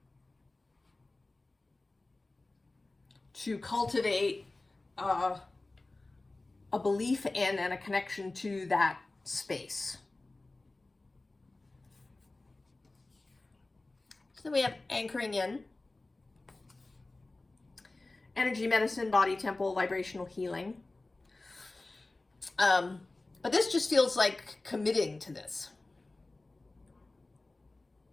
To cultivate a belief in and a connection to that space. So we have anchoring in, energy medicine, body temple, vibrational healing. But this just feels like committing to this.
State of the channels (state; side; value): quieter; right; 3.1 dB